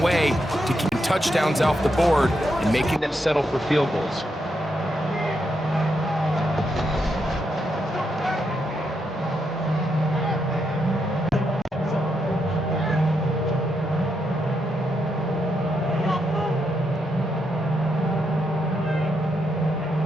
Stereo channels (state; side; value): normal; both; correlation 0.81